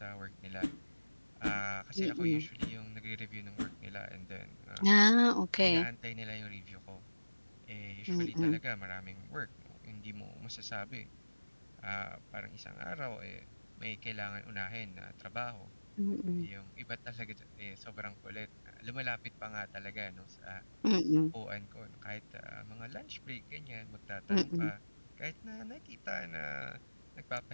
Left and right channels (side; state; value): both; inverted; correlation -1.00